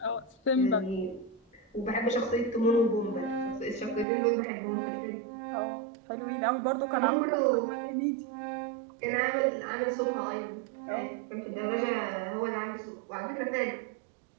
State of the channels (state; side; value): drops out; left; at 4.0 s